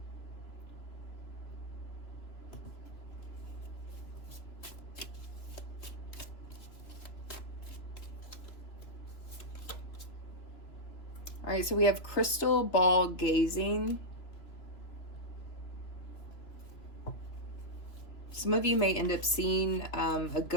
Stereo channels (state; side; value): late; right; 3.0 ms